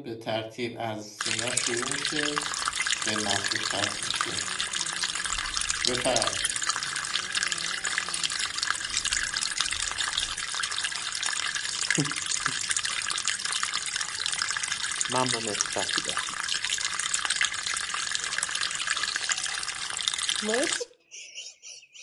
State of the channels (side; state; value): both; identical; correlation 1.00